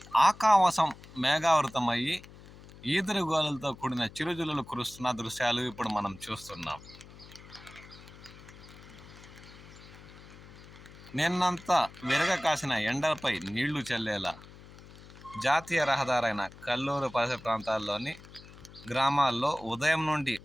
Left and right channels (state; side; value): noise; left; hum, 19 dB below the sound